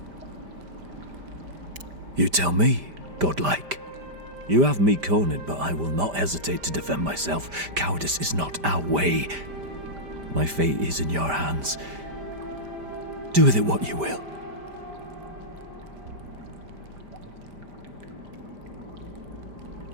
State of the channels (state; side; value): late; left; 5.1 ms